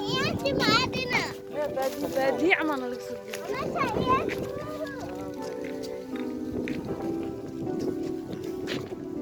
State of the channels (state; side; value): identical; both; correlation 1.00